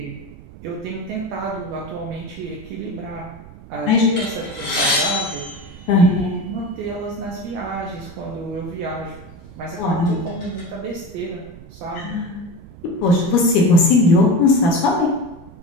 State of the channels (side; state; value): right; noise; rumble, 18 dB below the sound